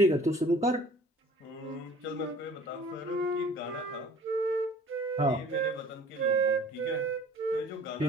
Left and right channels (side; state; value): both; normal; correlation 0.49